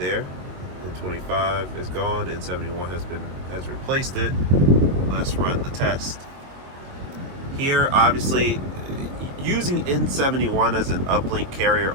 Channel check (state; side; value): late; left; 22 ms